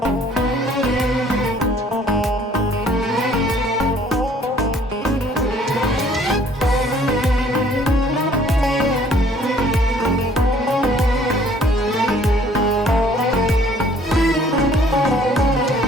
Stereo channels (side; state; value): both; normal; correlation 0.58